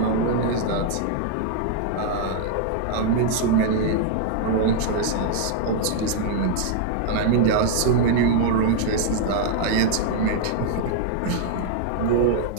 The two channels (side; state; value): both; different; correlation -0.01